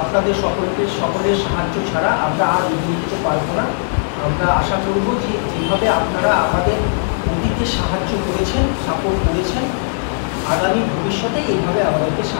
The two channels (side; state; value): right; silent; digital silence